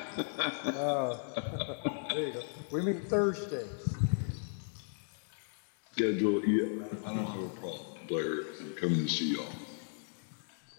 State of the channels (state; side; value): silent; right; digital silence